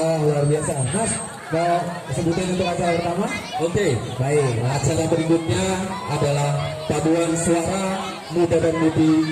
luar biasa. Mas, mau sebutin untuk acara pertama? Oke, baik. Acara berikutnya adalah paduan suara muda dan mudi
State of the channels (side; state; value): both; identical; correlation 1.00